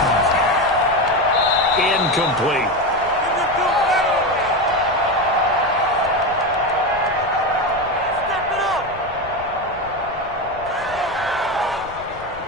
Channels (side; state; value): left; noise; rumble, 19 dB below the sound